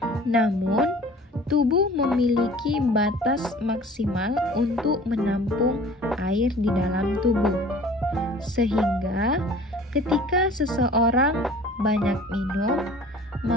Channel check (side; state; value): both; normal; correlation 0.47